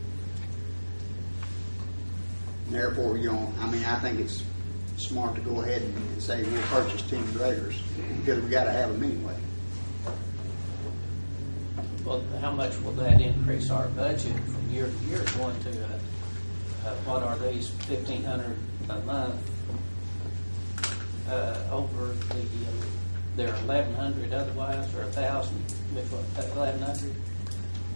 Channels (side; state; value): both; inverted; correlation -1.00